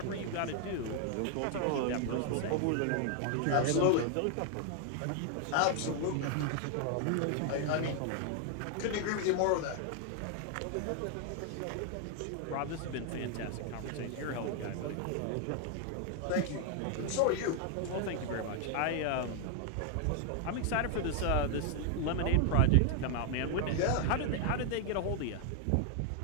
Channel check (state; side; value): different; both; correlation 0.00